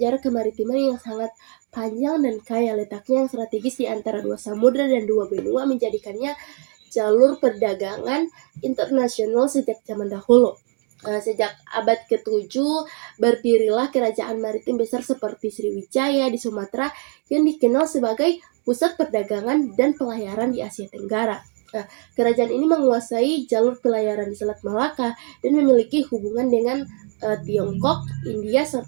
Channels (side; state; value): left; quieter; 39.8 dB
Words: kemaritiman yang sangat panjang dan kaya, letaknya yang strategis di antara dua samudra dan dua benua menjadikannya jalur perdagangan internasional sejak zaman dahulu. Sejak abad ke-7 berdirilah kerajaan maritim besar seperti Sriwijaya di Sumatera yang dikenal sebagai pusat perdagangan dan pelayaran di Asia Tenggara. Kerajaan ini menguasai jalur pelayaran di Selat Malaka dan memiliki hubungan dengan Tiongkok, India,